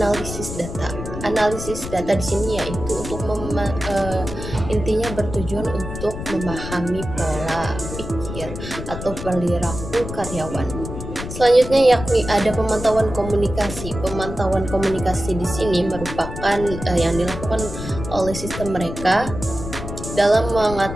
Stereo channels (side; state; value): left; noise; rumble, 8 dB below the sound